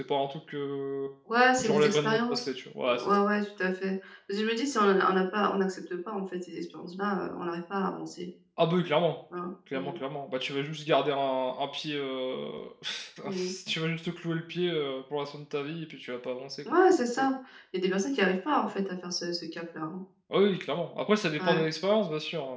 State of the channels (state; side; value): identical; both; correlation 1.00